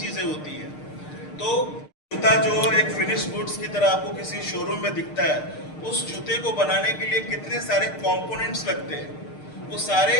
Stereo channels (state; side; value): late; right; 6.6 ms